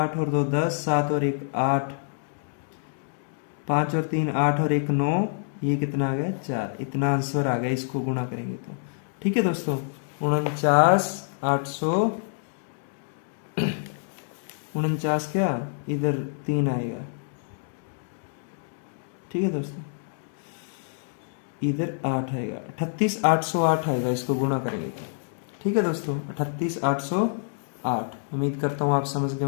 और 2 10, 7 और 1 8, 5 और 3 8 और 1 9, ये कितना आ गया 4। इतना आंसर आ गया, इसको गुणा करेंगे तो। ठीक है दोस्तों, 49 800, 49 क्या, इधर 3 आएगा। ठीक है दोस्तों, इधर 8 आएगा, 38 808 आएगा, इसको गुणा करेंगे तो। ठीक है दोस्तों, 38 808। उम्मीद करता हूँ आप समझ गए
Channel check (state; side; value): silent; right; digital silence